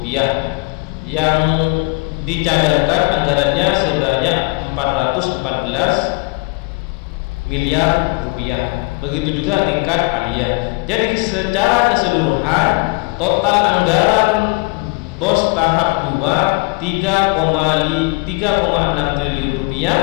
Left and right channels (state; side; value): quieter; right; 27.9 dB